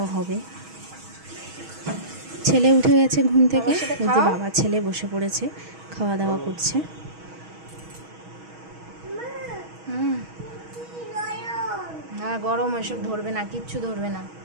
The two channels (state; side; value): late; left; 6.3 ms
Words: হবে। ছেলে উঠে গেছে ঘুম থেকে, এই যে বাবা ছেলে বসে পড়েছে, খাওয়া দাওয়া করছে। হ্যাঁ, গরম, এসব ধরবে না, কিচ্ছু ধরবে না।